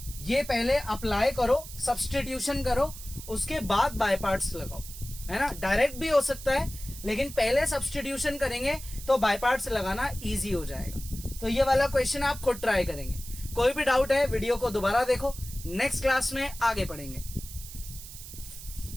ये पहले अप्लाई करो, सब्सटीट्यूशन करो, उसके बाद बाय पार्ट्स लगाओ, है ना। डायरेक्ट भी हो सकता है लेकिन पहले सब्सटीट्यूशन करेंगे तो बाय पार्ट्स लगाना इजी हो जाएगा। तो ये वाला क्वेश्चन आप खुद ट्राई करेंगे। कोई भी डाउट है वीडियो को दोबारा देखो, नेक्स्ट क्लास में आगे पढ़ेंगे।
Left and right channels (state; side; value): noise; right; hiss, 13 dB below the sound